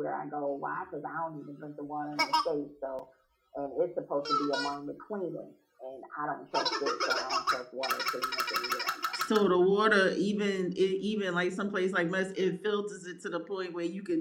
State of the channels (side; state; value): both; identical; correlation 1.00